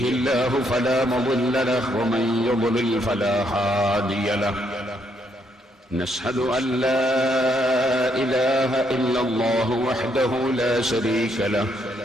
الله فلا مضل له ومن يضلل فلا هادي له نشهد أن لا إله إلا الله وحده لا شريك له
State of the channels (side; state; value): both; normal; correlation 0.73